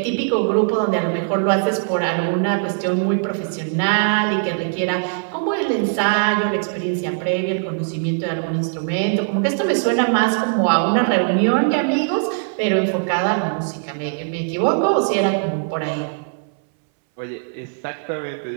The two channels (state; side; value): silent; left; 62 dB below the other